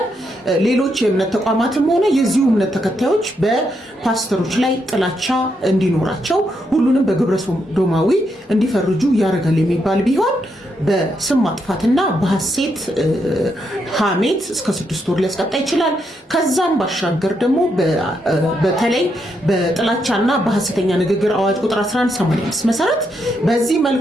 ሌሎች የእምነት ተቋማትም ሆነ የዚሁ እምነት ተከታዮች በፓስተሮች ላይ ጥላቻ እንዲኖራቸው ሁሉንም በግብረ ሰዶማዊ እንዲፈርጁ ያደርጋል የሚባል ቢሆን በስም ማጥፋትና በሐሰት ሐሜት እስከ 6 ወር ሊያስቀጣ ይችላል። ከዛም ባሻገር ደግሞ በተለይ በጥላቻና በሐሰተኛ ንግግር አዋጅ ቁጥር 1185 መሰረት በዚህ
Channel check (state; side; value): normal; both; correlation 0.80